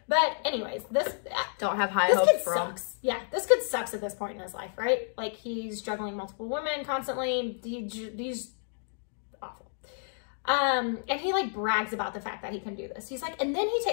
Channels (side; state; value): right; silent; digital silence